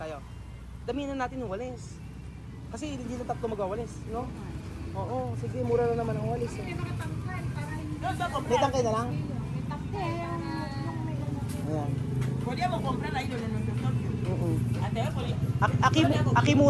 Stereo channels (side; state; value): both; identical; correlation 1.00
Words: Damihan na natin yung walis. Kasi hindi na tatlo magwawalis, no? Oo, sige, mura lang naman ang walis. Eh. May tangkay na lang? Ayan. Pwede mo comprar ahí donde nos tocó. Oo. Ate, pwede. Aki